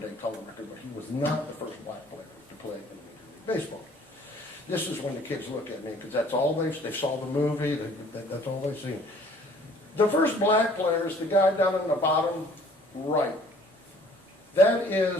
color record, but he was not the first black player to play in Major League Baseball. This is when the kids look at me, because that's all they saw the movie, that's all they've seen. The first black player is the guy down in the bottom right. That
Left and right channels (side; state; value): both; normal; correlation 0.56